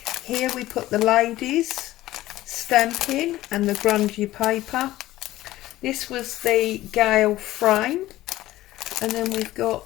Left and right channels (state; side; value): quieter; right; 15.9 dB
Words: Here we put the ladies stamping and the grungy paper. This was the Gale frame, and then we've got